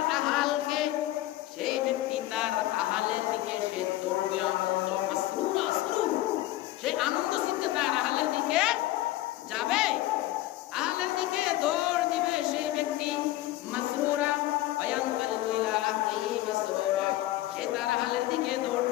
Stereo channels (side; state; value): right; quieter; 16.1 dB